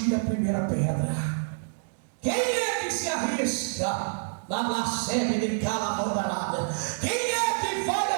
a primeira pedra. Quem é que se arrisca na blasfêmia de cala-bordarada? Quem é que vai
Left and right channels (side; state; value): left; silent; digital silence